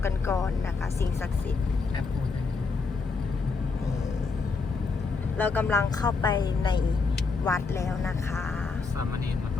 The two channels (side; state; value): right; quieter; 4.5 dB